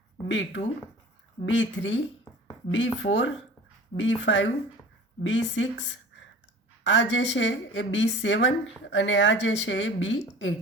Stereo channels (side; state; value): both; normal; correlation 0.41